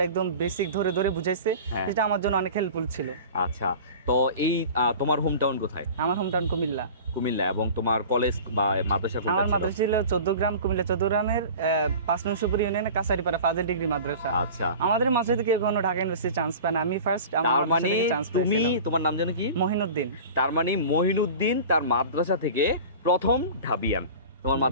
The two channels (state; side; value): inverted; both; correlation -0.37